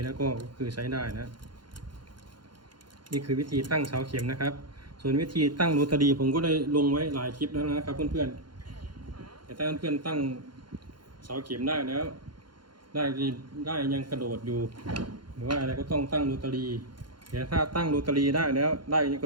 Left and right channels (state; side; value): late; left; 0.72 ms